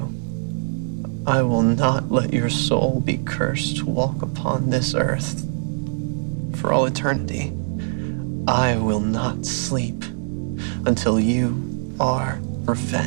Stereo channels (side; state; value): left; silent; 64 dB below the other